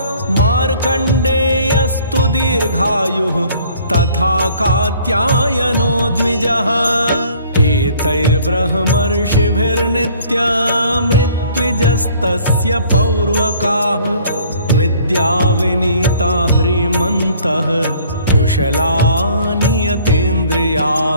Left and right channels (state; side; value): inverted; both; correlation -0.56